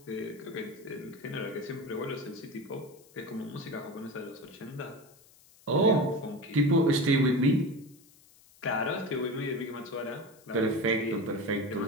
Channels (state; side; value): noise; left; hiss, 26 dB below the sound